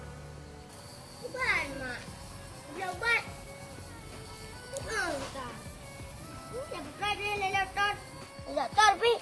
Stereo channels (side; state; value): both; identical; correlation 1.00